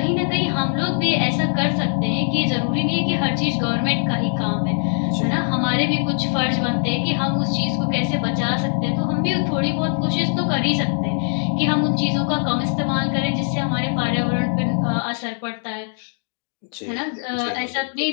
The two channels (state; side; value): silent; right; 57 dB below the other